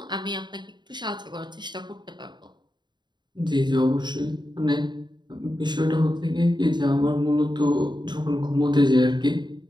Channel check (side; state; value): left; late; 0.21 ms